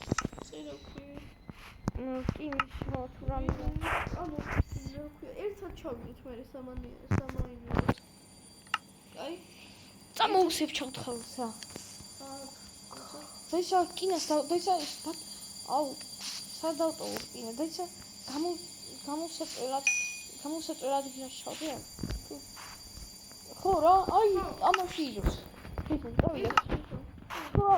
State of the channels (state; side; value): identical; both; correlation 1.00